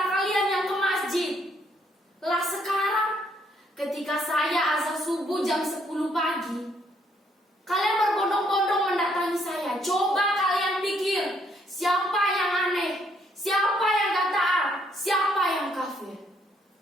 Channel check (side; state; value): both; normal; correlation 0.69